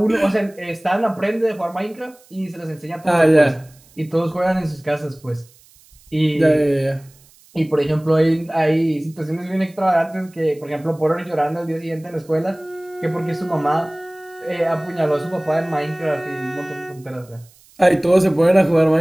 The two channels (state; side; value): noise; right; hiss, 28 dB below the sound